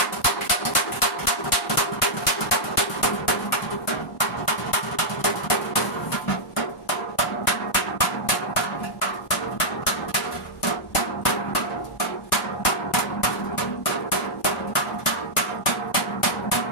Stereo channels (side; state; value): both; normal; correlation -0.07